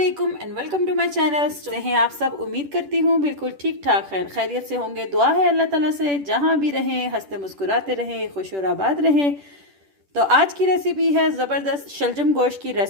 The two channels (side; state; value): left; late; 10 ms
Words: and welcome to my channel. कैसे हैं आप सब? उम्मीद करती हूँ बिल्कुल ठीक ठाक खैरियत से होंगे। दुआ है अल्लाह ताला से जहाँ भी रहें हंसते मुस्कुराते रहें, खुश और आबाद रहें। तो आज की रेसिपी है ज़बरदस्त शलजम गोश्त की